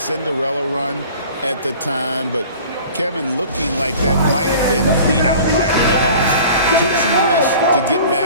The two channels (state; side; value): inverted; both; correlation -0.44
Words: run at the time, but Kevin, looking like that might have been the outlier. The Hawks took some risks to get